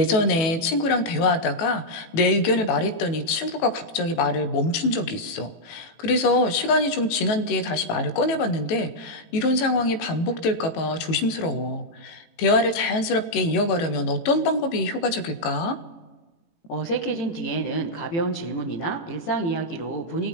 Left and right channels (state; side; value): late; right; 18 ms